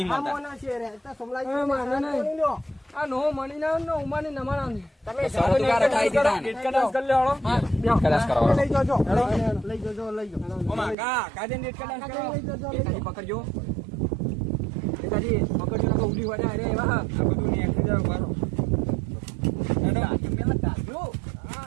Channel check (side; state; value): left; drops out; at 11.0 s